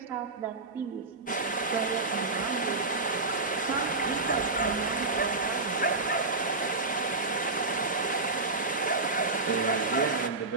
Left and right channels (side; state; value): left; quieter; 3.5 dB